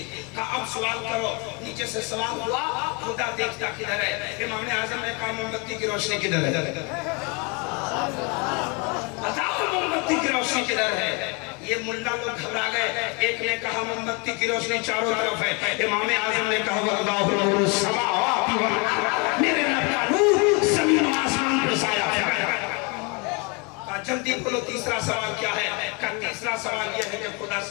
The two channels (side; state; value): right; quieter; 31.1 dB